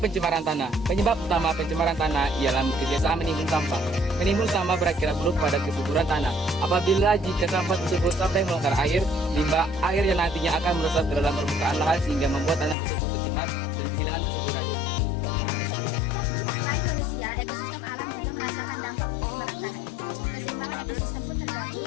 pencemaran tanah. Penyebab utama pencemaran tanah ialah kebiasaan menimbun sampah. Menimbun sampah berakibat buruk pada kesuburan tanah. Apabila jika sampah tersebut sampai melanggar air, limbah air yang nantinya akan meresap ke dalam permukaan lahan sehingga membuat tanah tersebut tercemar dan kehilangan kesuburannya. Selain manusia, ekosistem alam juga merasakan dampak pencemaran tanah ini. Keseimbangan ekosistem pun terganggu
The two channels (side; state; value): right; drops out; at 12.8 s